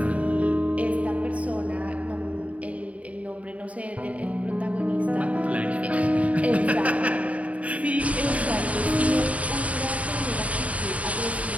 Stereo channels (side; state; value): left; late; 0.067 ms